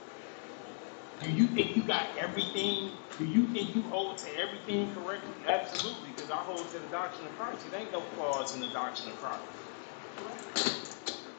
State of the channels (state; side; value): silent; right; digital silence